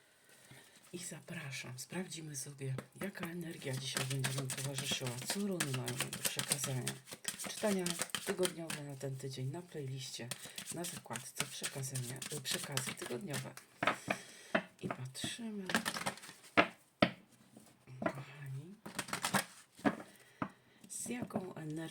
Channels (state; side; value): identical; both; correlation 1.00